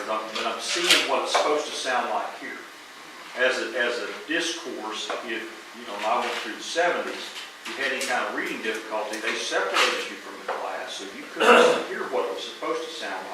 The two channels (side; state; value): both; identical; correlation 1.00